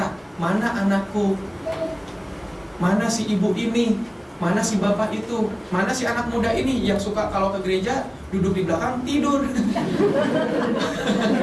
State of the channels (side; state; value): both; identical; correlation 1.00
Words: Mana anakku? Mana si ibu ini? Mana si bapak itu? Mana si anak muda ini yang suka kalau ke gereja duduk di belakang tidur?